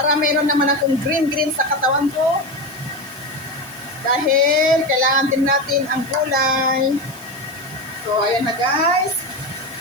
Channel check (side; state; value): left; noise; hiss, 23 dB below the sound